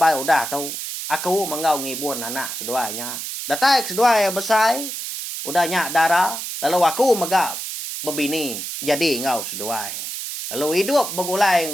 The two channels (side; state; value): right; noise; hiss, 6 dB below the sound